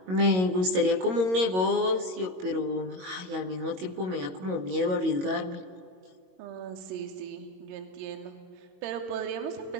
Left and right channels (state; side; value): late; left; 22 ms